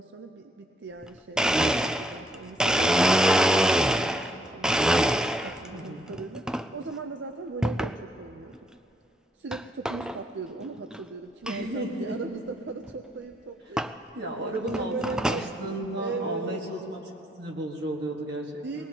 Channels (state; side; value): normal; both; correlation 0.73